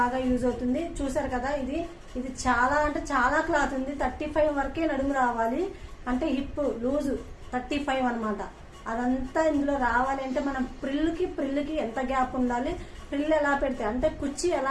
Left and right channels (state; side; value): identical; both; correlation 1.00